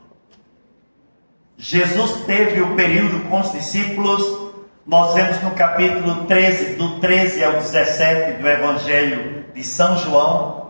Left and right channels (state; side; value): inverted; both; correlation -1.00